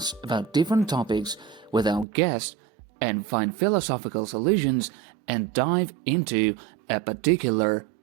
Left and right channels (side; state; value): left; drops out; at 2.1 s